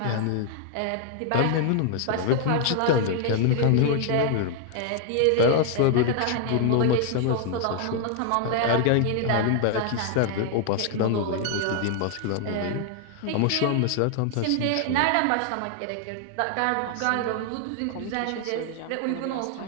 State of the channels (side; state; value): both; different; correlation 0.00